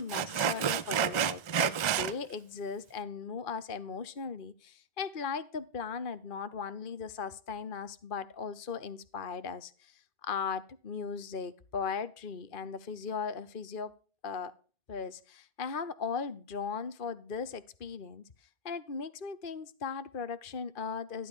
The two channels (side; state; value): right; late; 1.4 ms